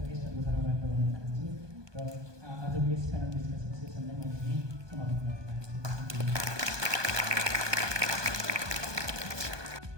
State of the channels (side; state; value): left; late; 1.2 ms